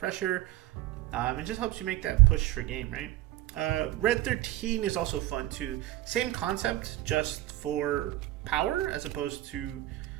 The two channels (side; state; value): left; quieter; 15.6 dB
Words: It just helps you make that push for game, right? Red 13 is also fun too. Same concept, just for power as opposed to,